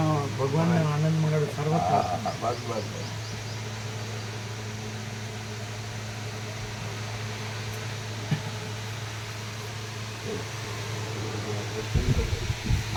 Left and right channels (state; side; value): identical; both; correlation 1.00